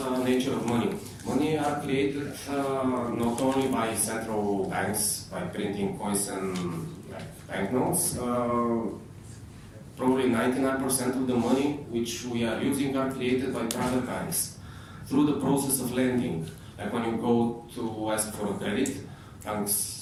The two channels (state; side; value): identical; both; correlation 1.00